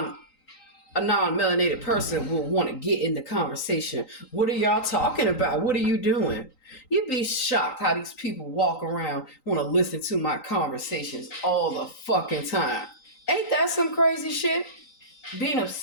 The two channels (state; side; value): late; right; 3.9 ms